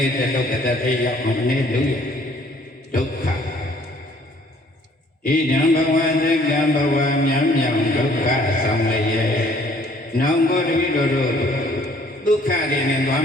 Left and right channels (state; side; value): normal; both; correlation 0.59